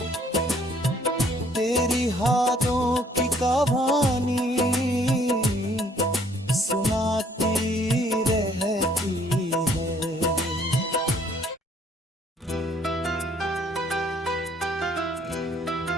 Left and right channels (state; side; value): normal; both; correlation 0.63